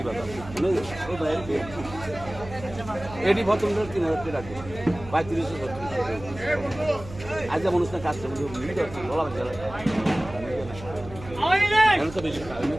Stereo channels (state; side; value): noise; right; hum, 14 dB below the sound